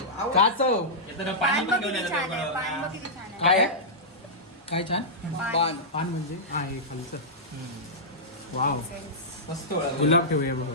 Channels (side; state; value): both; normal; correlation -0.13